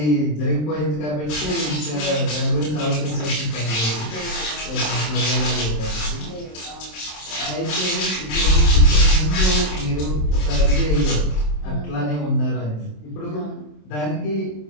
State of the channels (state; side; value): late; right; 27 ms